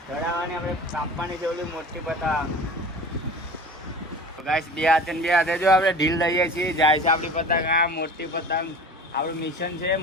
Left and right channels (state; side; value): normal; both; correlation 0.38